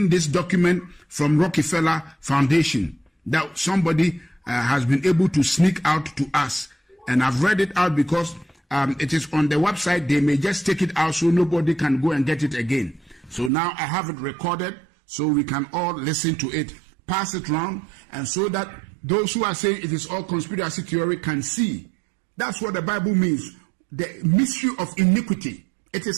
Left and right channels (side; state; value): left; drops out; at 13.5 s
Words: this document from Rockefeller Foundation that somebody has been able to sneak out to us. And I've read it out because it is on the website. They may just take it out so nobody can go and get it again. So now I have it recorded so we can all listen to it, pass it round, and so that those who are saying it is all conspiracy theory can see. That's what the Bible means. The mystery of iniquity. It